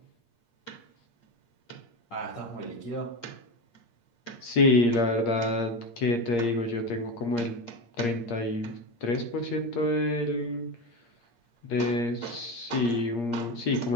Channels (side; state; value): right; late; 8.6 ms